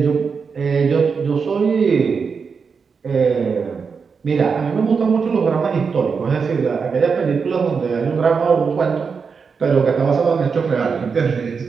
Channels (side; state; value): left; quieter; 5.6 dB